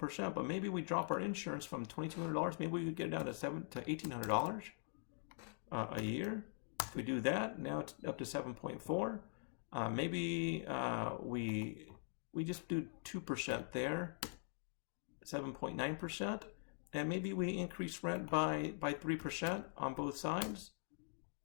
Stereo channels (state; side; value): silent; right; digital silence